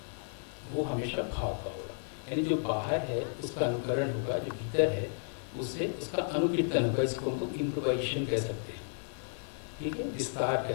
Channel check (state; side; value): silent; right; digital silence